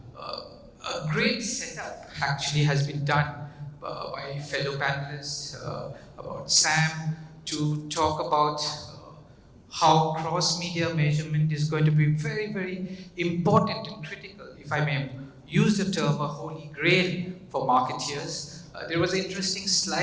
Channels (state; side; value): identical; both; correlation 1.00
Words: a great setup actually has been done by fellow panelists about Sam to talk about how cross-media measurement is going to be very, very important and critical, if I may use the term, a holy grail for marketeers. There was an interesting